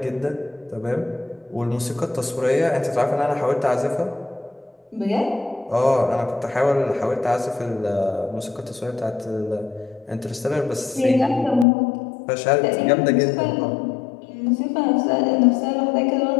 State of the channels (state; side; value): drops out; right; at 11.7 s